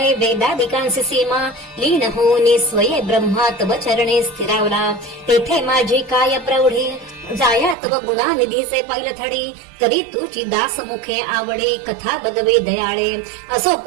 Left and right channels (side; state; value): left; drops out; at 7.8 s